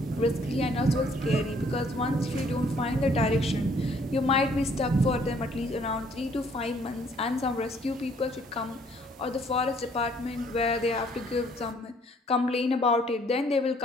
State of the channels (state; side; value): normal; both; correlation 0.62